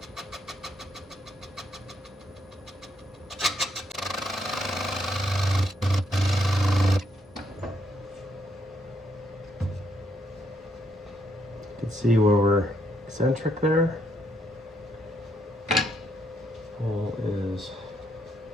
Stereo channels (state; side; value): normal; both; correlation 0.75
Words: You can see where we're eccentric there. Well, is